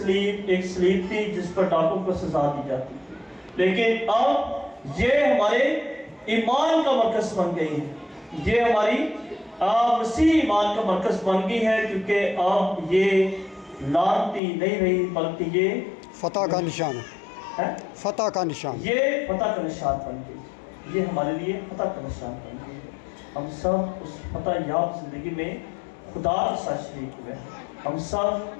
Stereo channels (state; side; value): drops out; right; at 14.4 s